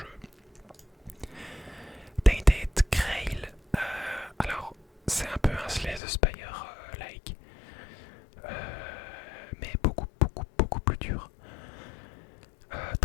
Tainted Grail. Alors c'est un peu un Slay the Spire like, mais beaucoup plus dur.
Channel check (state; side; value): drops out; right; at 6.0 s